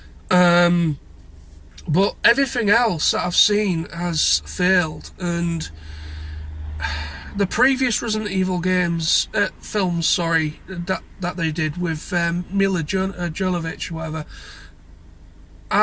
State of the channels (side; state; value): both; identical; correlation 1.00